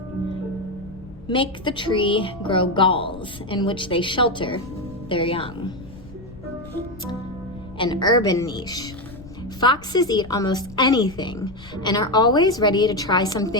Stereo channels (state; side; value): noise; left; rumble, 18 dB below the sound